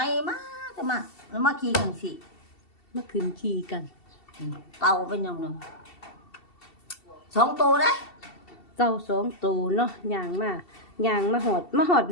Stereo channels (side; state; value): right; late; 2.7 ms